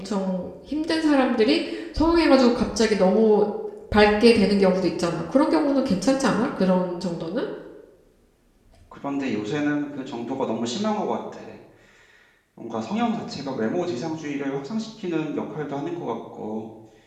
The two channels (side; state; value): both; identical; correlation 1.00